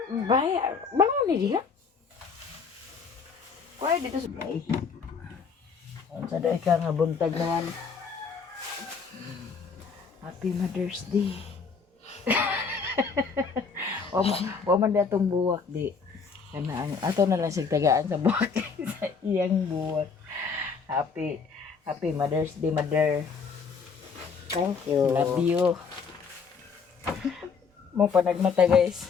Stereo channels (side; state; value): right; quieter; 5.5 dB